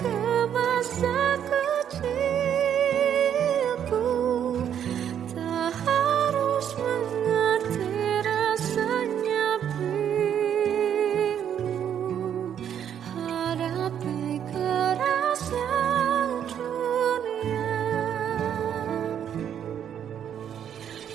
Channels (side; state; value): left; quieter; 9.2 dB